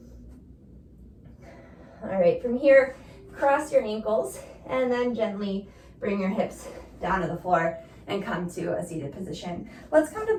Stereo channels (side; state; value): both; identical; correlation 1.00